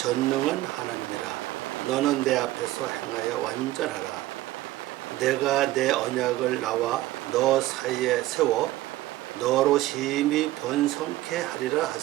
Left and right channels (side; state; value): left; quieter; 16.3 dB